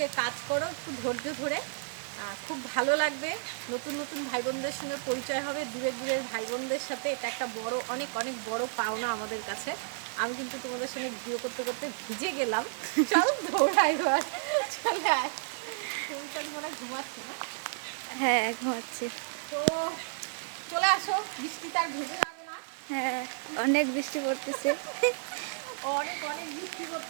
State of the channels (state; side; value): silent; left; digital silence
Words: কাজ করো একটু ধৈর্য ধরে খুব ভালো লাগবে নতুন নতুন ভাই বোনদের সঙ্গে পরিচয় হবে দূরের ভাই বোনদের সাথে এটা একটা বড় অনেক বড় পাওনা আমাদের কাছে আমি কিন্তু তোমাদের সঙ্গে ভিডিও করতে করতে ভিজে গেলাম চল দৌড়াই এবার চলে আয় তুমি তো মনে ঘুমাচ্ছি না হ্যাঁ ঘুমাচ্ছে তো চলে আসো বৃষ্টি তার ভেজে যাবে না হ্যাঁ অনেক বৃষ্টি পড়তেছে অনেক বৃষ্টি